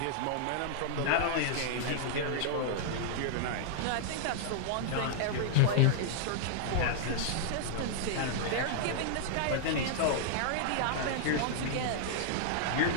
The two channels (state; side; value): different; both; correlation -0.01